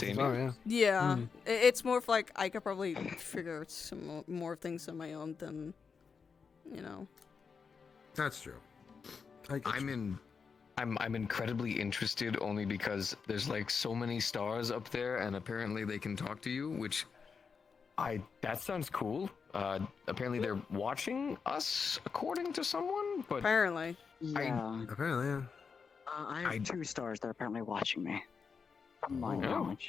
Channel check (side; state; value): right; quieter; 5.6 dB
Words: than sorry, here. yeah. Yeah, it's more of like I could probably figure out some more things on my own than, you know. That's true. I'm incredibly interested only because there's like so many stars up there and apparently they can talk to you, which that sounds cool. Apparently they're watching us according to someone, but apparently. Yeah. Apparently, yeah. I have 2 stars that are apparently watching me. From my